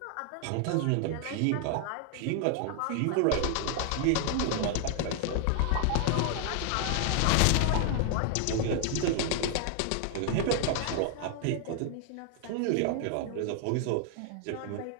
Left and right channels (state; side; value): different; both; correlation 0.00